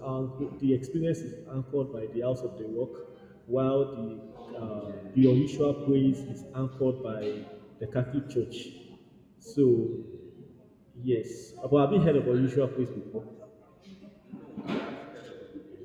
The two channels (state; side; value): identical; both; correlation 1.00